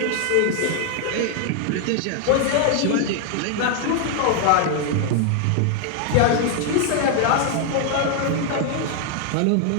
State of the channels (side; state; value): both; different; correlation 0.00